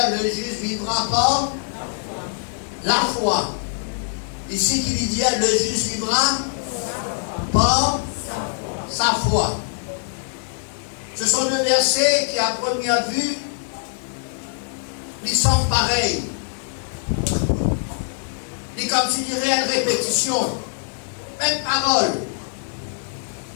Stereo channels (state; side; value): silent; right; digital silence